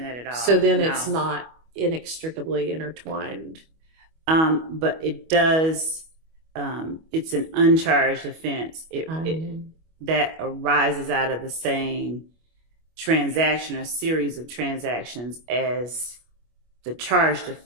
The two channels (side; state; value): left; late; 25 ms